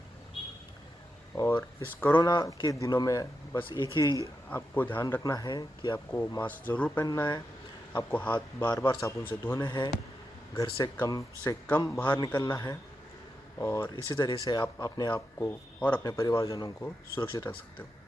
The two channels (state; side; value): normal; both; correlation 0.87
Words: और इस कोरोना के दिनों में बस एक ही आपको ध्यान रखना है कि आपको मास्क ज़रूर पहनना है, आपको हाथ बार बार साबुन से धोने हैं, घर से कम बाहर निकलना है, और इसी तरह से आप अपने आप को और अपने परिवारजनों को सुरक्षित रख सकते हो।